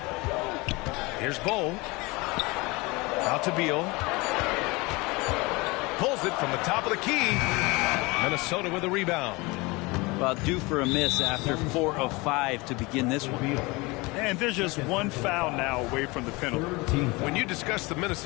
Here's Bull. Out to Beal. Pulls it from the top of the key. Minnesota with a rebound. Well, due for a miss after 4 of 5 to begin this one. And there's just one foul now away from the penalty. When you discuss the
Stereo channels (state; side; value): quieter; right; 24.5 dB